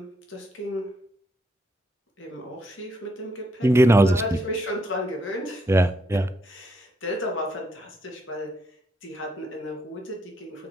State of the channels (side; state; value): both; normal; correlation 0.76